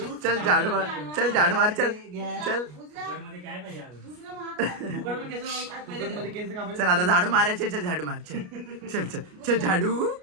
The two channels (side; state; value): left; late; 33 ms